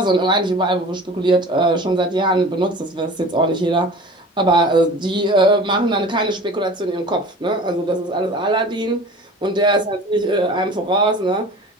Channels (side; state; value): both; normal; correlation 0.40